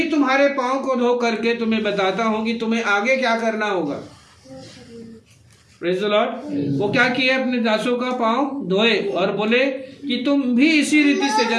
तुम्हारे पाँव को धो करके तुम्हें बताता हूँ कि तुम्हें आगे क्या करना होगा, प्रेज द लॉर्ड। वो क्या किए, अपने दासों का पाँव धोए और बोले कि तुम भी इसी रीति से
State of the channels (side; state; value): both; identical; correlation 1.00